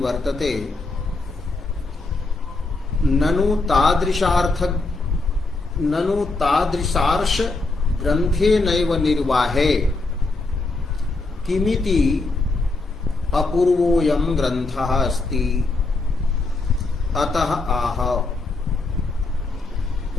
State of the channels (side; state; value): right; quieter; 3.4 dB